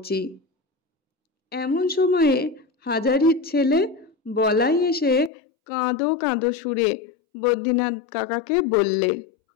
এমন সময়ে হাজারির ছেলে বলাই এসে কাঁদো কাঁদো সুরে বদ্রীনাথ কাকাকে বললে,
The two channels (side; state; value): right; drops out; at 5.3 s